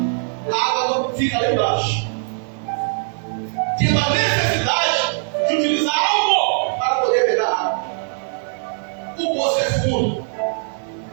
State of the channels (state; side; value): silent; left; digital silence